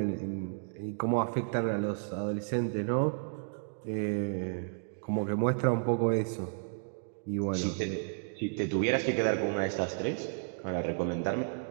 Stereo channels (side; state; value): left; silent; digital silence